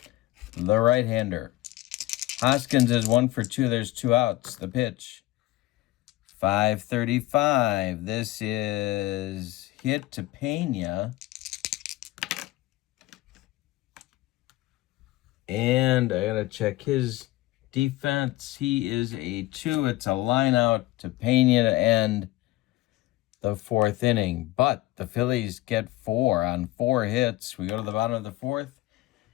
The right-hander. Hoskins is 1 for 2. There's 2 outs. The pitch. 5:35. This is hit to Pena. And I got to check his defense. He is a 2. It's a line out to Pena to end the 4th inning. But the Phillies get 4 on 4 hits. We go to the bottom of the 4th.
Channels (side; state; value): right; quieter; 17.6 dB